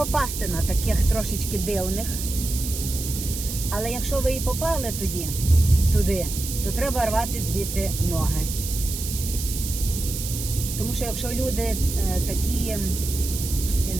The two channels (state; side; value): noise; right; hiss, 7 dB below the sound